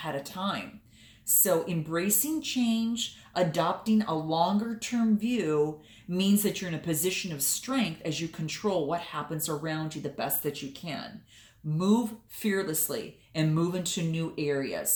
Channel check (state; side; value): identical; both; correlation 1.00